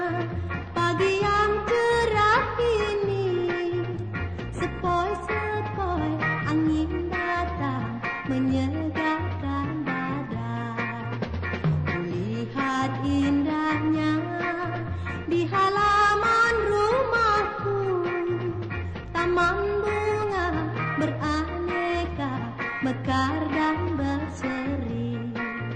pagi yang cerah ini. Sepoi-sepoi angin datang menyegarkan badan. Kulihat indahnya di halaman rumahku, taman bunga beraneka mekar dan berseri.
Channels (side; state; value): both; identical; correlation 1.00